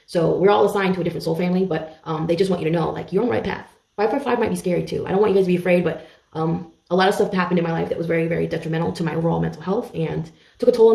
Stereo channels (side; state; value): both; identical; correlation 1.00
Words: So we're all assigned to a different soul family, but they just want you to know, like, you're on the right path. 555 might be scary too. I don't want you guys to be afraid, but a lot of stuff happened in my life that was very, very detrimental to my overall mental health and took a toll